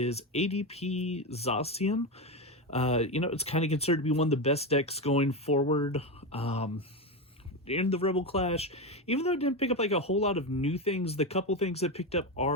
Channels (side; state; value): both; normal; correlation 0.14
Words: ADP Zacian. It's kind of considered to be one of the best decks going forward in the Rebel Clash. Even though it didn't pick up like a whole lot of new things, the couple things that picked up